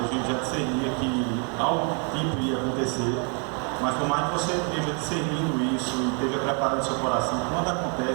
gente já discernia que algo tipo ia acontecer, mas por mais que você esteja discernindo isso e esteja preparando seu coração, quando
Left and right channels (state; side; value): quieter; left; 37.7 dB